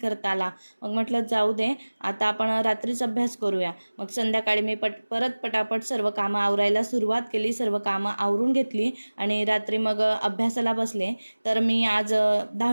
आला. मग म्हटलं जाऊ दे, आता आपण रात्रीच अभ्यास करूया. मग संध्याकाळी मी परत पटापट सर्व कामं आवरायला सुरुवात केली. सर्व कामं आवरून घेतली आणि रात्री मग अभ्यासाला बसले. तर मी आज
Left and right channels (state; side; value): inverted; both; correlation -1.00